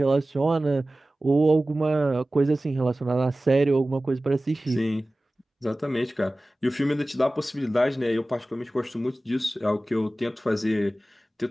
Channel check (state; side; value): normal; both; correlation 0.97